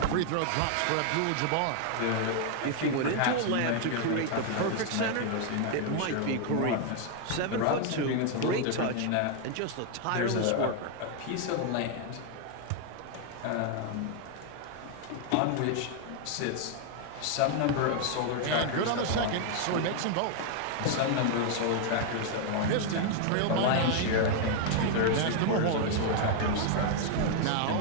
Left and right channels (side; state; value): both; different; correlation 0.00